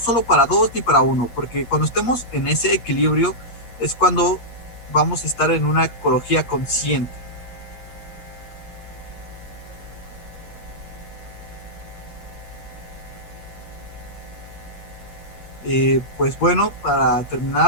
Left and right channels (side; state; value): right; late; 8.4 ms